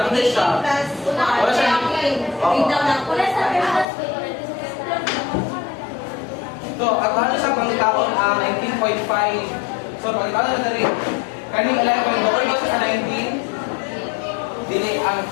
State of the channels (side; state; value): right; drops out; at 3.9 s